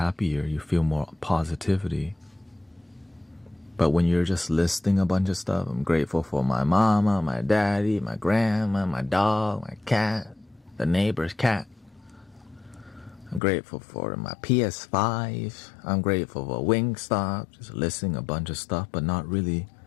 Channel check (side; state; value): right; drops out; at 13.4 s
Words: You feel more positivity. But when you're just listing a bunch of stuff, I'm grateful for my mama, my daddy, my grandma, my dog, my cat, the neighbor's cat. I'm grateful for my PS5. I'm grateful for Wingstop. Just listing a bunch of stuff, but not really